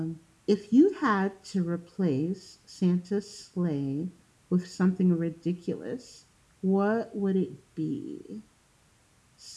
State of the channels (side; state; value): both; identical; correlation 1.00